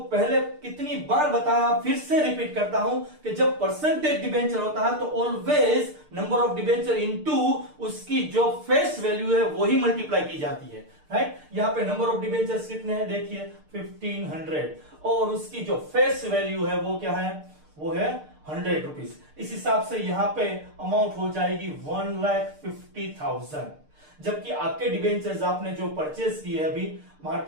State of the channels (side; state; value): left; late; 6.6 ms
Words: पहले कितनी बार बताया, फिर से रिपीट करता हूं कि जब परसेंटेज डिबेंचर होता है तो always number of debenture into उसकी जो फेस वैल्यू है वही मल्टीप्लाई की जाती है, राइट। यहां पे नंबर ऑफ डिबेंचर्स कितने हैं? देखिए 1500, और उसकी जो फेस वैल्यू है वो क्या है? वो है ₹100। इस हिसाब से यहाँ पे अमाउंट हो जाएगी 1,50,000। जबकि आपके डिबेंचर्स आपने जो परचेज किए अभी